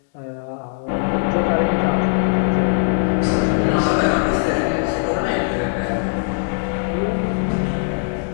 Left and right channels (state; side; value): silent; right; digital silence